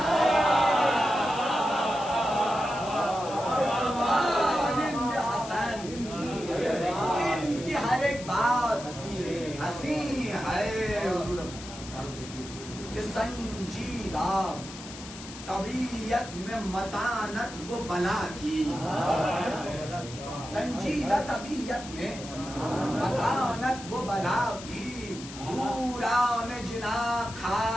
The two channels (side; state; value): left; noise; hiss, 14 dB below the sound